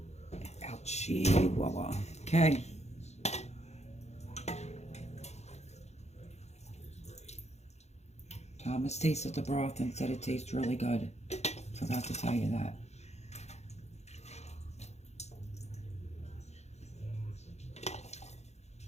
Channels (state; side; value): late; right; 0.32 ms